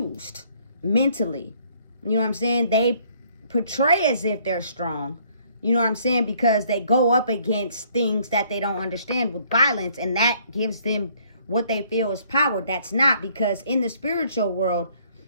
mentally. You know what I'm saying? They portray as if they're strong. You know what I'm saying? Because they go up against things that they don't understand with violence, and that gives them what they feel is power. That's not, because in the spiritual world,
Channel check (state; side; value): inverted; both; correlation -0.63